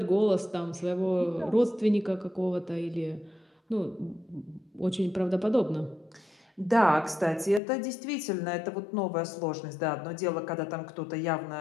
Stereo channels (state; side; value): drops out; right; at 7.6 s